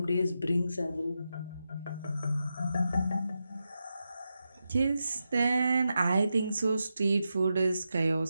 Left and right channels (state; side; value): inverted; both; correlation -0.88